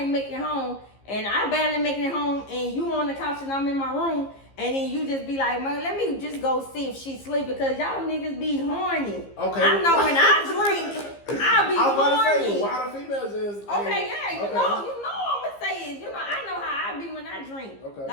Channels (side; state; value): right; late; 15 ms